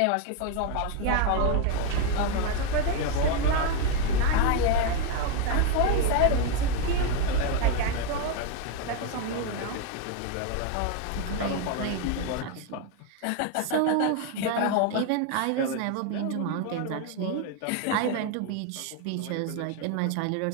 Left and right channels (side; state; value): both; different; correlation 0.01